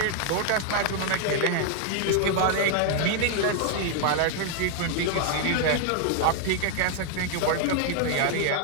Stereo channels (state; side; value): different; both; correlation 0.00